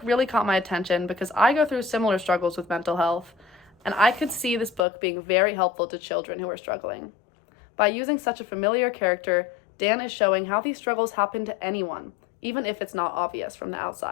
really caught my attention because I go through similar struggles with mental health, and I could see this book being very helpful to children who are struggling. By using such a familiar character, Dan is showing how these struggles happen to anyone, even if it's not obvious from the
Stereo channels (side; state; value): right; drops out; at 4.9 s